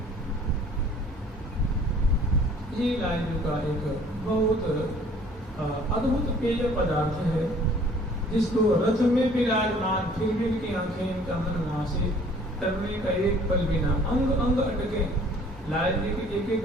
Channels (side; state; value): both; normal; correlation 0.54